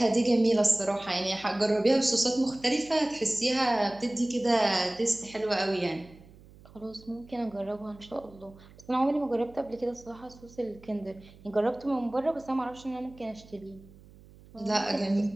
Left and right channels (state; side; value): noise; right; hum, 23 dB below the sound